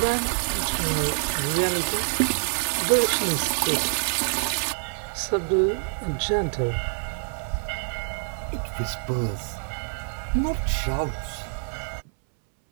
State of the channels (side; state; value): left; silent; 61 dB below the other